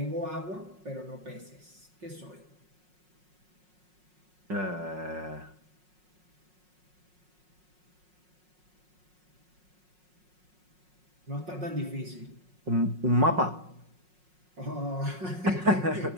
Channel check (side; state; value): left; late; 5.5 ms